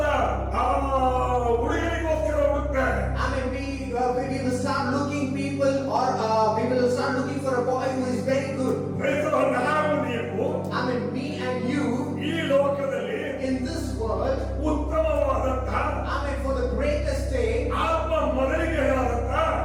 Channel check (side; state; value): both; identical; correlation 1.00